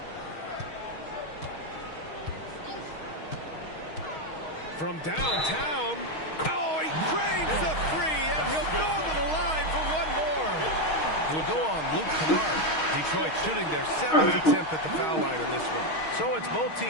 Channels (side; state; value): right; late; 6.4 ms